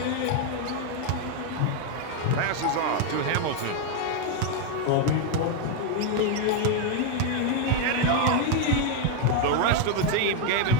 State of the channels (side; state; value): both; different; correlation 0.01